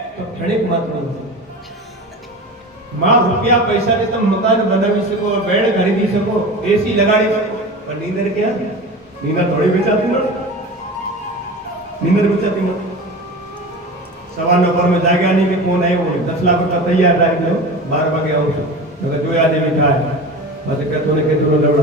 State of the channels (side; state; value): both; normal; correlation 0.32